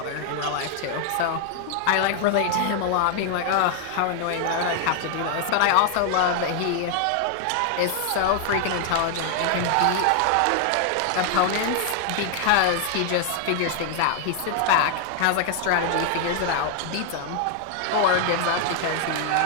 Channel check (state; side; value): different; both; correlation 0.00